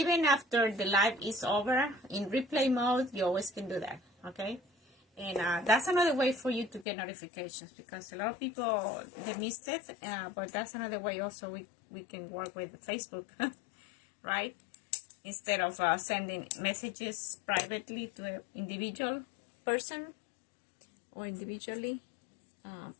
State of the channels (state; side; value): drops out; right; at 6.9 s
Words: after the live is over, in replay mode, you always can do that, okay? And that's another way for you to get notifications, because a lot of people, they missed it, but that's another way also we can work with Facebook, right? Instead of sending messages privately to an individual person or individually,